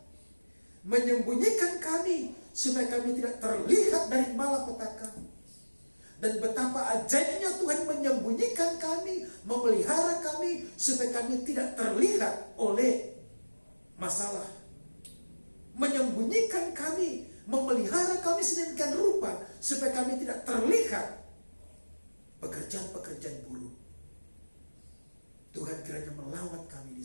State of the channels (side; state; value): both; inverted; correlation -1.00